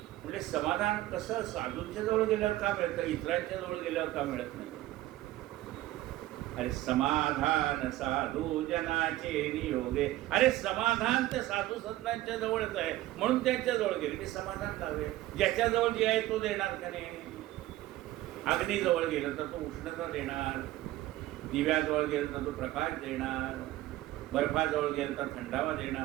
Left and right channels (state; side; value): quieter; left; 15.9 dB